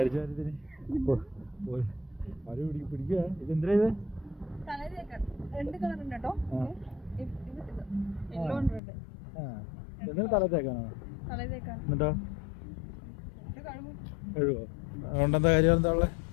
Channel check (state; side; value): drops out; right; at 8.8 s